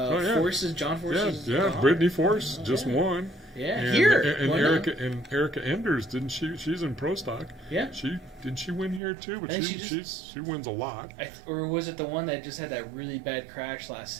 Forces, John Forces. Yeah. daughter. Brittany Force just yeah. won. Yeah, And, here. and Won Erica Enders, didn't she? She's in pro stock. Yeah. Didn't she win here too? But I think she wins a lot. or was it the one that just had that really bad crash last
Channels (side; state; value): left; drops out; at 9.0 s